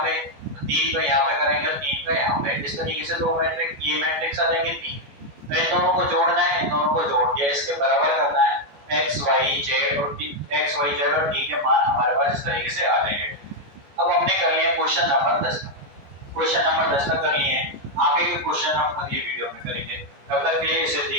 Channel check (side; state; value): left; late; 14 ms